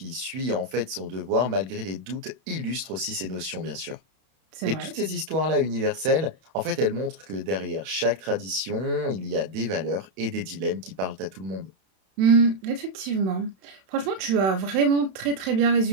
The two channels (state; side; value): late; left; 31 ms